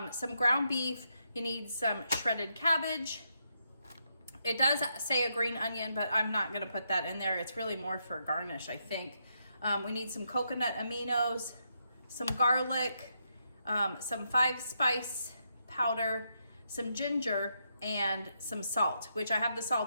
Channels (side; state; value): both; inverted; correlation -0.80